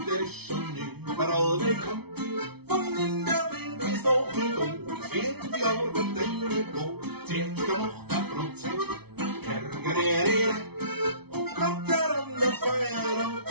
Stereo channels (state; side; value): late; left; 0.98 ms